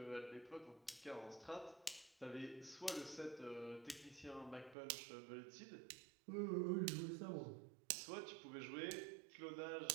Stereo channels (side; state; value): left; drops out; at 4.8 s